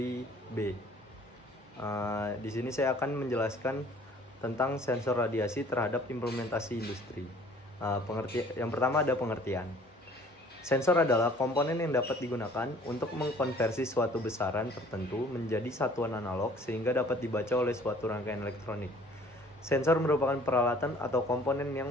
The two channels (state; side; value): normal; both; correlation 0.53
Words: B. Di sini saya akan menjelaskan tentang sensor radiasi terhadap implementasi industri. Yang pertama ada pengertian. Sensor adalah komponen yang dapat digunakan untuk mengkonversi suatu besaran tertentu menjadi satuan analog sehingga dapat dibaca oleh suatu rangkaian elektronik. Sensor merupakan peralatan atau komponen yang